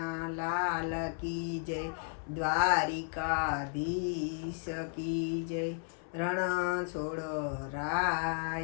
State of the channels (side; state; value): right; silent; 55 dB below the other